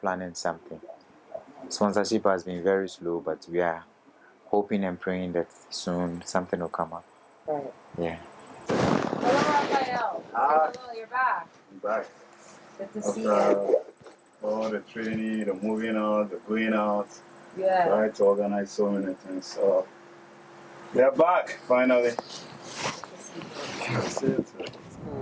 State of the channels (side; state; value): both; identical; correlation 1.00